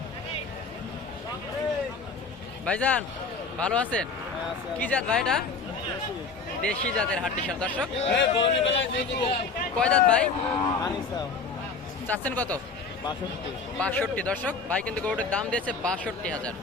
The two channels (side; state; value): right; quieter; 4.4 dB